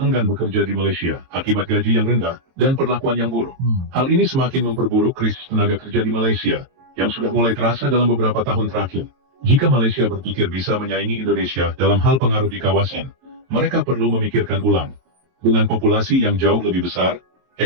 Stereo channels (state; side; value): late; left; 23 ms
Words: bekerja di Malaysia akibat gaji yang rendah dan perlakuan yang buruk. Hal ini semakin memperburuk krisis tenaga kerja di Malaysia yang sudah mulai terasa dalam beberapa tahun terakhir. Jika Malaysia berpikir bisa menyaingi Indonesia dalam hal pengaruh di kawasan, mereka perlu memikirkan ulang. Dengan populasi yang jauh lebih besar,